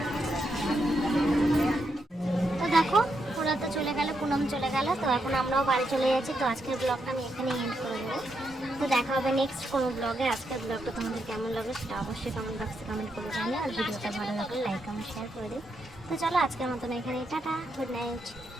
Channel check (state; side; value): normal; both; correlation 0.81